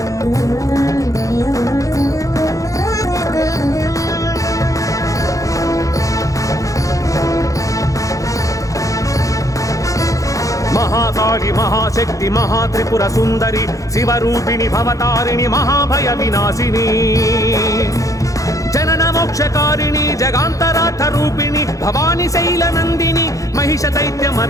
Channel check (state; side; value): late; right; 0.16 ms